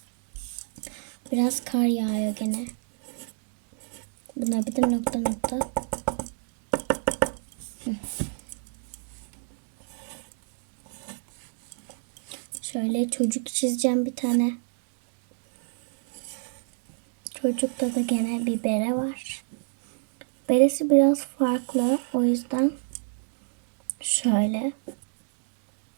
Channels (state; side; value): silent; left; 59 dB below the other